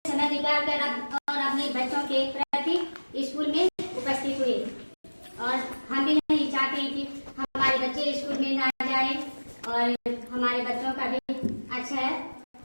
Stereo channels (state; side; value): inverted; both; correlation -1.00